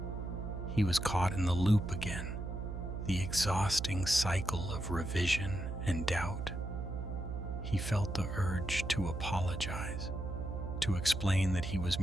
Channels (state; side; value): noise; right; hum, 5 dB below the sound